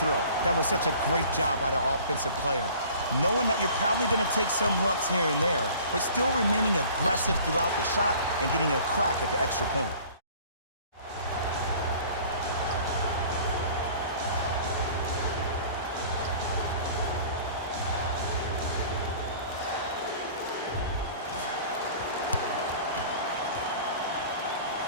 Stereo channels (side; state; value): both; inverted; correlation -0.47